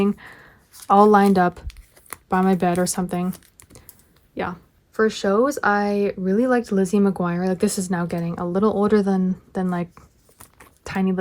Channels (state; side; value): identical; both; correlation 1.00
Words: all lined up by my bed or something. Yeah. For shows, I really liked Lizzie McGuire. Like, this is now getting a little older than like tiny